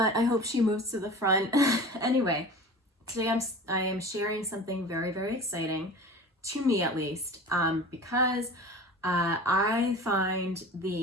I hope she moves to the front. Anyway, today I am sharing something very, very exciting, to me at least, because I find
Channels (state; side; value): normal; both; correlation 0.37